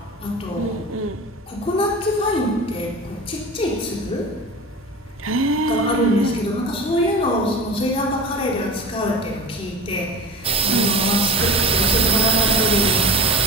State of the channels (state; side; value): normal; both; correlation 0.33